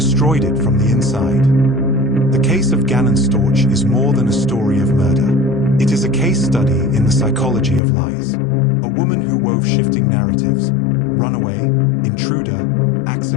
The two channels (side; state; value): right; drops out; at 7.8 s